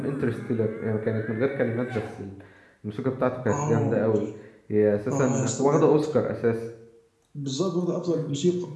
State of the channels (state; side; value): identical; both; correlation 1.00